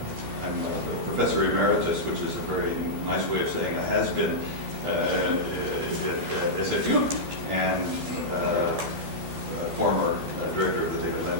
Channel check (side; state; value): left; late; 12 ms